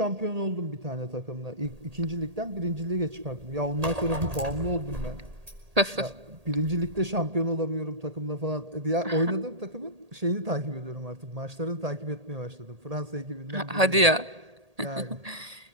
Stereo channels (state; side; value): late; left; 1.8 ms